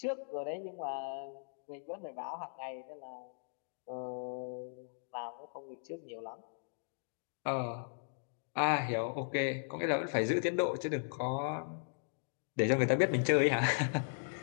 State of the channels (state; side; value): silent; right; digital silence